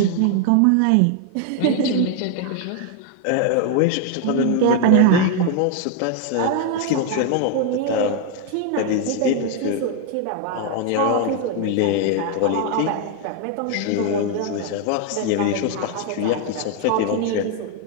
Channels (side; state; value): both; different; correlation 0.00